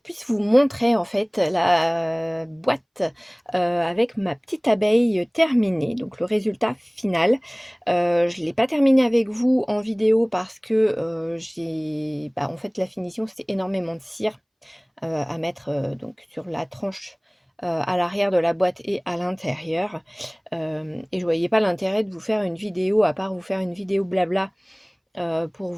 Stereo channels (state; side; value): identical; both; correlation 1.00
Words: vous montrer en fait la boîte, avec ma petite abeille terminée, donc le résultat final. Je ne l'ai pas terminée avec vous en vidéo parce que, en fait la finition c'est énormément de cire, à mettre, donc sur la tranche, à l'arrière de la boîte et à l'intérieur. Et je voyais pas l'intérêt de vous faire une vidéo, à part vous faire une vidéo blabla, pour